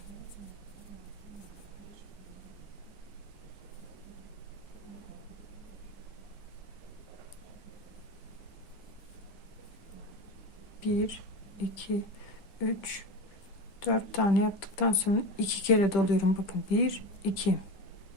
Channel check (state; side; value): late; right; 10 ms